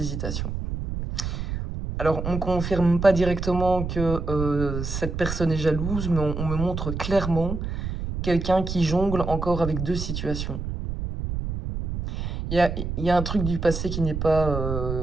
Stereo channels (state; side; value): noise; right; rumble, 4 dB below the sound